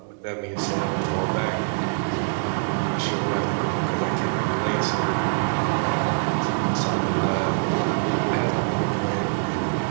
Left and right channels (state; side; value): silent; left; 62 dB below the other